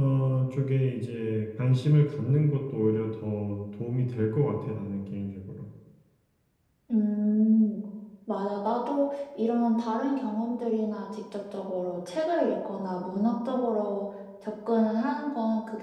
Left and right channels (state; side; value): identical; both; correlation 1.00